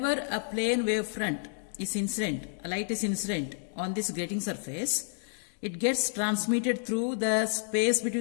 a plane wavefront is incident, a light is incident on this grating surface, it gets transmitted through the space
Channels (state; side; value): silent; right; digital silence